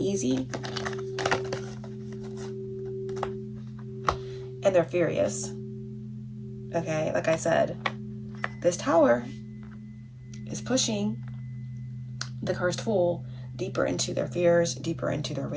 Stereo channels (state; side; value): identical; both; correlation 1.00